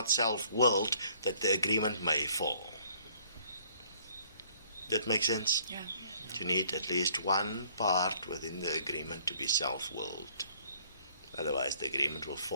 self-willed, that the agreement may fall. That makes sense? Yeah. You need at least one part within the agreement to be self-willed. Otherwise the agreement will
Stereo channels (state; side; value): inverted; both; correlation -0.60